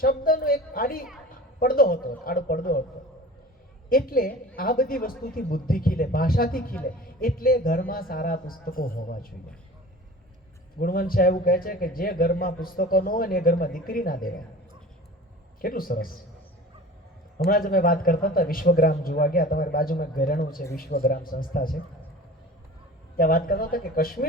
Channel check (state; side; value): normal; both; correlation 0.40